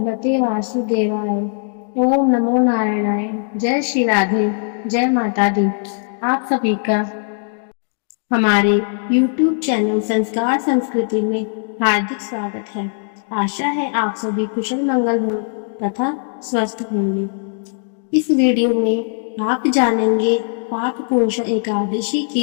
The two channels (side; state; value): right; silent; 64 dB below the other